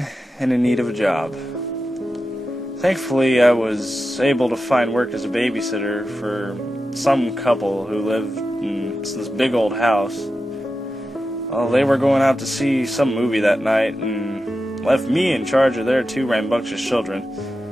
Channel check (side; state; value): both; normal; correlation 0.91